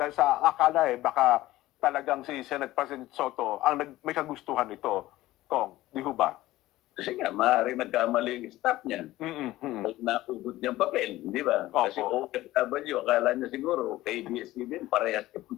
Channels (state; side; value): quieter; right; 16.5 dB